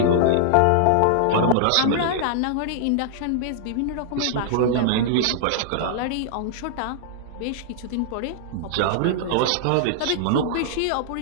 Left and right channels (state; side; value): different; both; correlation -0.01